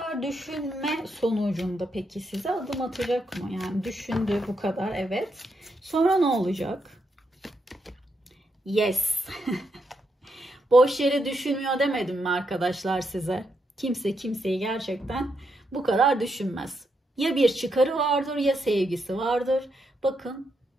düşünme sonucunda peki size adım atacak mı? Yani düşündü bu kadar, evet. Sonra ne olacak? Yes. Boş yere düşünmüyor demedim mi arkadaşlar size? Kimse kimseyi gerçekten bu kadar düşünmez. Ya bir çıkarı vardır ya sevgisi vardır. Bakın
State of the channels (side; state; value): both; normal; correlation 0.81